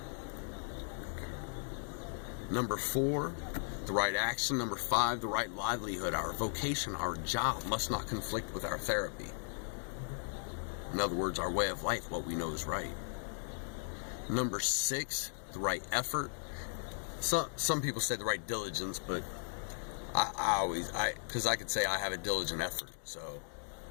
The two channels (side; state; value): right; silent; digital silence